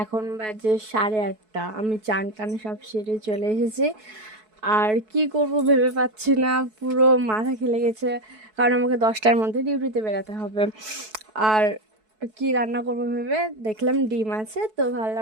এখন বাজে 8:30। আমি চান টান সব সেরে চলে এসেছি। আর কি করব ভেবে পাচ্ছি না, পুরো মাথা খেলে গেছে। কারণ আমাকে 10টার মধ্যে ডিউটিতে বেরোতে হবে। আর কি রান্না করবো ভেবে দেখলাম ডিম আছে, তো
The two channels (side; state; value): left; late; 4.6 ms